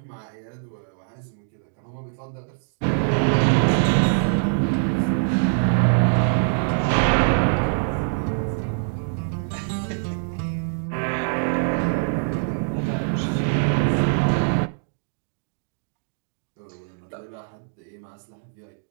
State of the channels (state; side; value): silent; left; digital silence